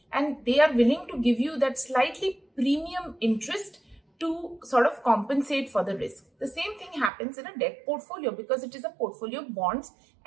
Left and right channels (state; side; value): drops out; left; at 7.1 s